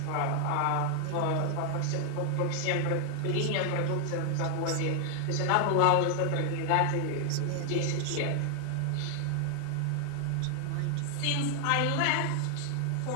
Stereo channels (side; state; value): both; different; correlation 0.00